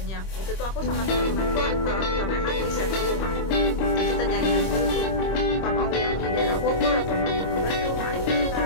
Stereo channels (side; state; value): right; late; 26 ms